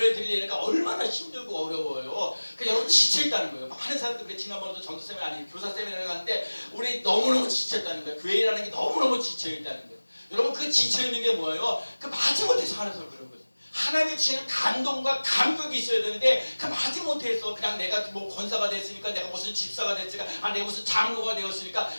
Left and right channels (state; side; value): inverted; both; correlation -1.00